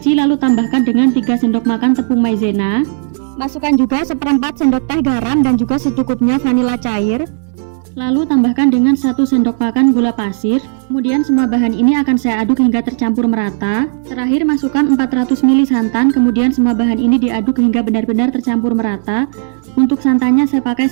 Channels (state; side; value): silent; left; digital silence